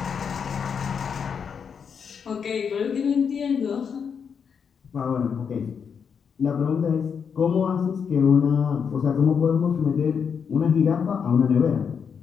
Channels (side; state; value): right; quieter; 6.7 dB